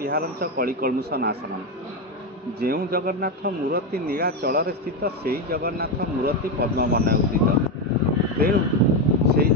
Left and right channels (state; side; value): normal; both; correlation 0.10